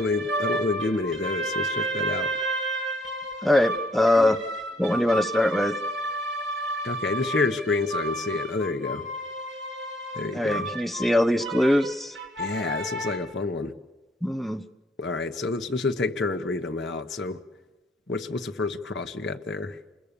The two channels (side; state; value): both; normal; correlation 0.66